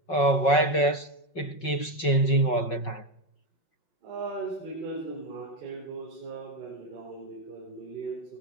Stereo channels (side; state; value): right; late; 5.4 ms